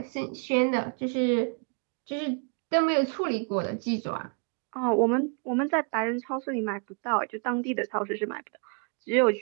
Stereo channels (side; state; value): left; quieter; 38.2 dB